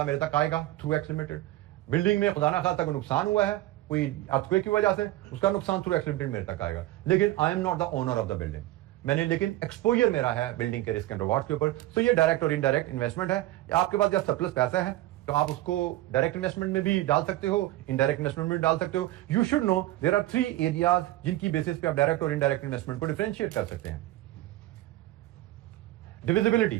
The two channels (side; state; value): left; quieter; 16.3 dB